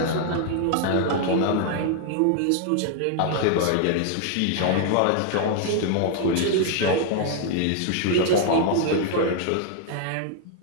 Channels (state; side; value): different; both; correlation 0.00